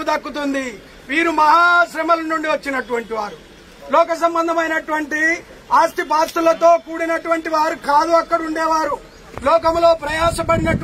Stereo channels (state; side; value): identical; both; correlation 1.00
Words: దక్కుతుంది. వీరు మహాశ్రమల నుండి వచ్చినటువంటి వారు, లోక సంబంధమైనటువంటి ఆస్తి పాస్తులతో కూడినటువంటి వారు కాదు. అక్కడ ఉండేవారు లోకంలో